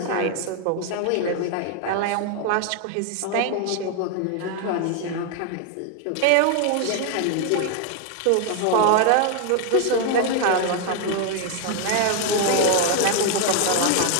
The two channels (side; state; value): both; different; correlation 0.00